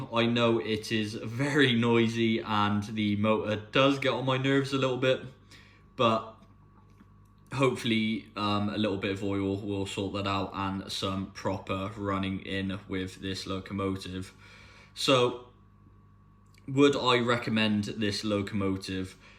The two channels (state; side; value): identical; both; correlation 1.00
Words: I know it is very noisy and the motor does get on my nerves a little bit, but hopefully a little bit of oil will sort that out and some proper running in with this locomotive. So, would I recommend this locomotive?